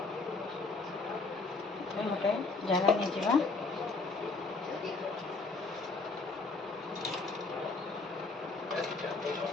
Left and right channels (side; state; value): right; quieter; 4.0 dB